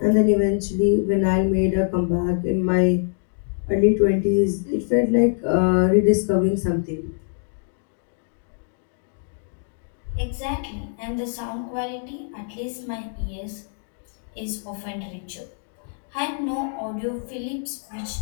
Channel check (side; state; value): right; silent; digital silence